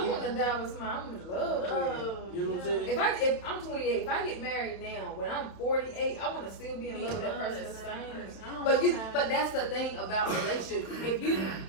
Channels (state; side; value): late; right; 31 ms